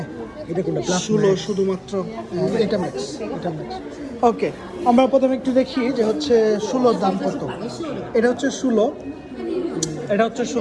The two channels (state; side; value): identical; both; correlation 1.00